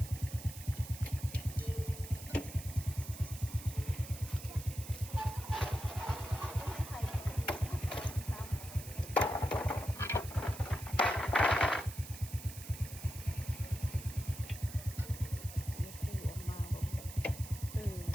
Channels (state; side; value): noise; right; hiss, 13 dB below the sound